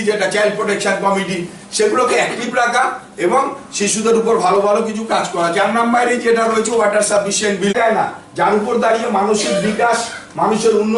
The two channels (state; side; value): identical; both; correlation 1.00